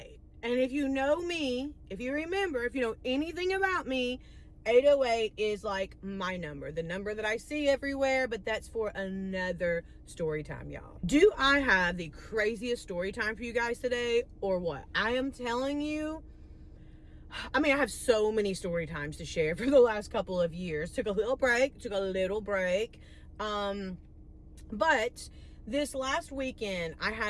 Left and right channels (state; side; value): identical; both; correlation 1.00